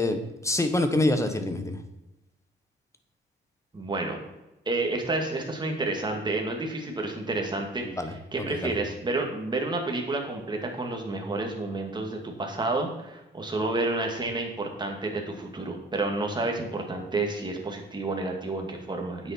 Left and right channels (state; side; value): normal; both; correlation 0.50